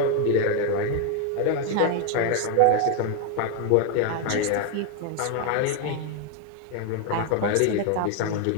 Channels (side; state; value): both; different; correlation 0.01